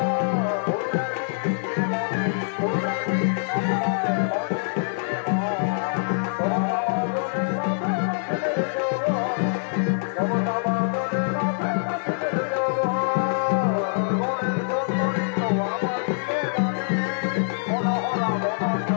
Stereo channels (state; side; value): silent; right; 62 dB below the other